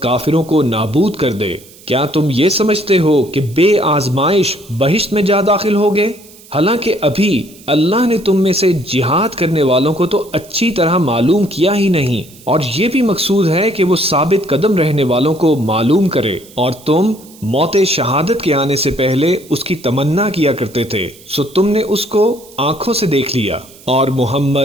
کو نابود کر دے۔ کیا تم یہ سمجھتے ہو کہ بے آزمائش بہشت میں جا داخل ہوگے؟ حالانکہ ابھی اللہ نے تم میں سے جہاد کرنے والوں کو تو اچھی طرح معلوم کیا ہی نہیں، اور یہ بھی مقصود ہے کہ وہ ثابت قدم رہنے والوں کو معلوم کرے، اور تم موت شہادت کے آنے سے پہلے اس کی تمنا کیا کرتے تھے، سو تم نے اس کو آنکھوں سے دیکھ لیا۔ اور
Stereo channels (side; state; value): right; noise; hiss, 23 dB below the sound